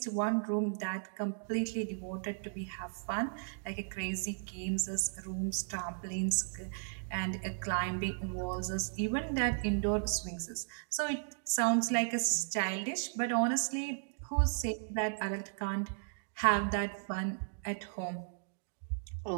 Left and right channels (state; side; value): silent; left; digital silence